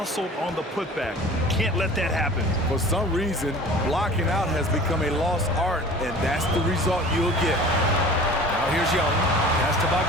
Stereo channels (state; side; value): normal; both; correlation 0.43